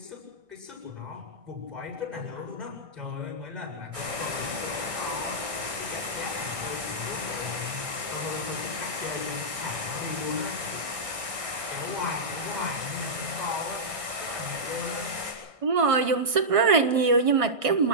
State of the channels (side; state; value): left; late; 1.6 ms